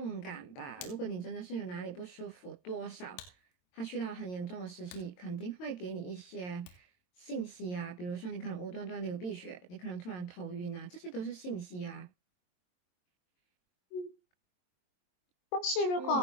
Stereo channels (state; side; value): late; right; 22 ms